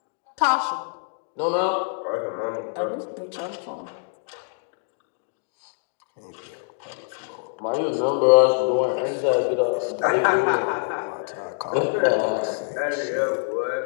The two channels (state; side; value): silent; right; digital silence